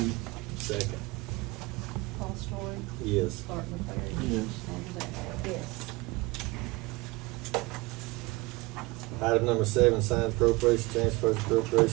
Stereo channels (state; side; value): quieter; left; 23.0 dB